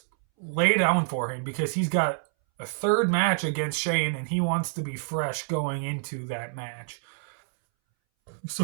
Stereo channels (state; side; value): silent; left; 60 dB below the other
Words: lay down for him because he's got a third match against Shane and he wants to be fresh going into that match.